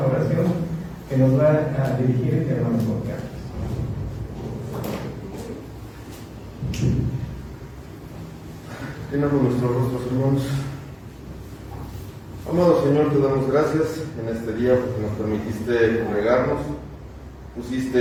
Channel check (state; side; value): identical; both; correlation 1.00